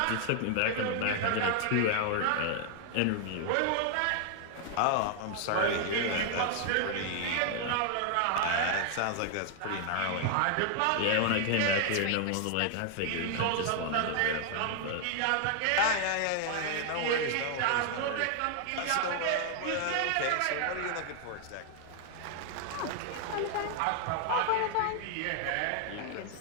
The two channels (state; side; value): different; both; correlation 0.00